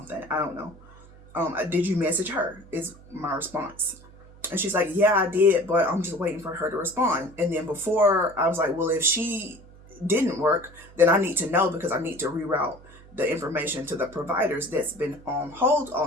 I don't know. Did you message her? Is my response. And she's like, yeah, I did, but I'm just waiting for her to respond. And then before, I was like, well, if she didn't work, then I need to know, because I need to reroute the information to the providers that's been on hold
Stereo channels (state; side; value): noise; right; hum, 22 dB below the sound